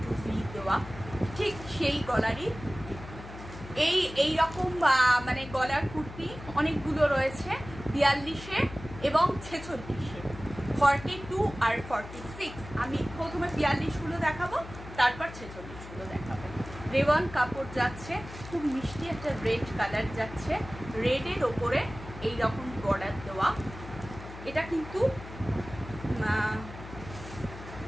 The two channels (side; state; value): left; noise; hum, 14 dB below the sound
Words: ভি দেওয়া, ঠিক সেই গলারই। এই রকম মানে গলার কুর্তি অনেকগুলো রয়েছে 42-এ এবং 46-এ, 42 আর 46। আমি প্রথমে 42গুলো দেখাবো, তারপর 46গুলো দেখাবো। রেওয়ান কাপড় যাচ্ছে, খুব মিষ্টি একটা রেড কালার যাচ্ছে, রেডের ওপরে এই রকম বর্ডার দেওয়া। এটা কিন্তু